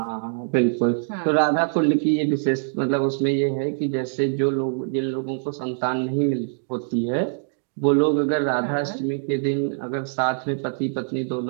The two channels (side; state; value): left; silent; digital silence